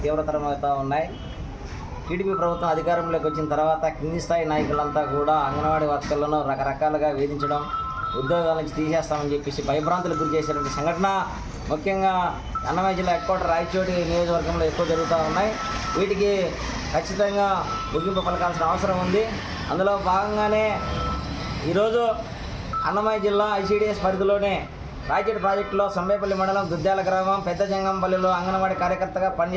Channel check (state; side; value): identical; both; correlation 1.00